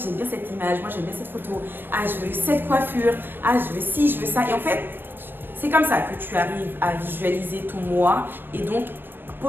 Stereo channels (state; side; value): late; left; 0.096 ms